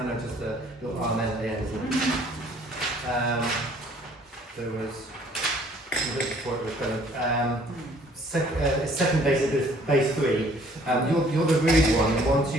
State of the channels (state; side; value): normal; both; correlation 0.58